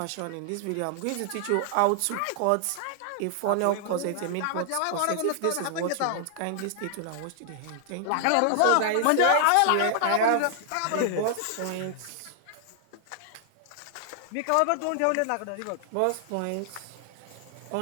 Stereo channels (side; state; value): both; different; correlation 0.00